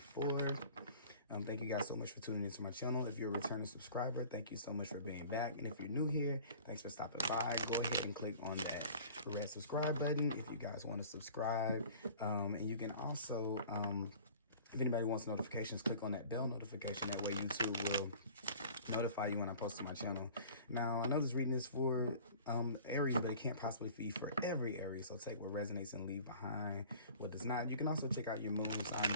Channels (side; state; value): both; inverted; correlation -0.45